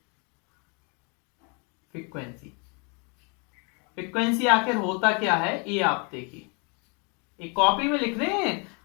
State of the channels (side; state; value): right; quieter; 34.6 dB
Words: फ्रीक्वेंसी। फ्रीक्वेंसी आखिर होता क्या है ये आप देखिए, एक कॉपी में लिख रहे हैं,